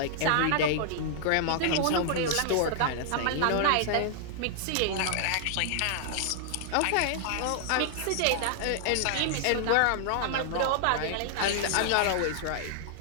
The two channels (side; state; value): both; different; correlation -0.01